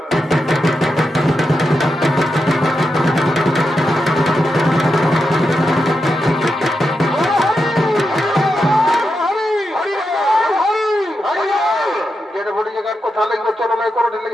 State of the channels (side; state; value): both; normal; correlation 0.87